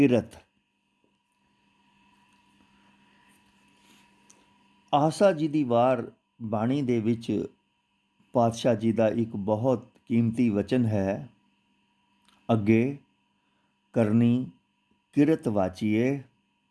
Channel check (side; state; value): both; identical; correlation 1.00